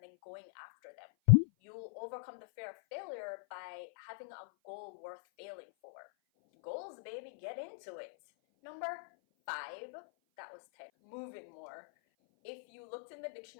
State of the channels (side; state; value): right; silent; 51 dB below the other